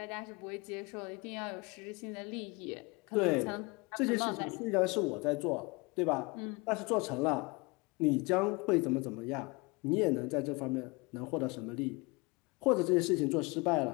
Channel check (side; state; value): right; quieter; 26.9 dB